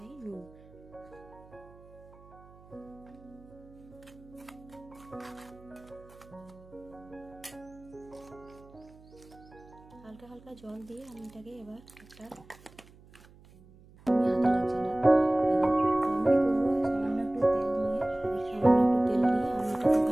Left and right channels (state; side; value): noise; right; hum, 24 dB below the sound